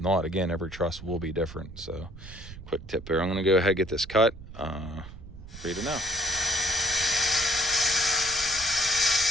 again, every truss will be different. So quick tip here, I'm going to go ahead and get this cut for you to know.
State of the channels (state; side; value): noise; right; rumble, 14 dB below the sound